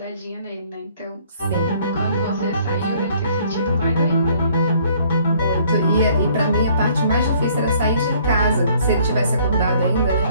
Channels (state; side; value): inverted; both; correlation -0.60